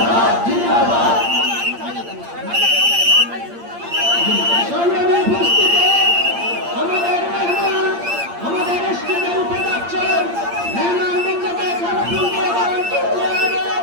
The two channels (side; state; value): left; late; 8.7 ms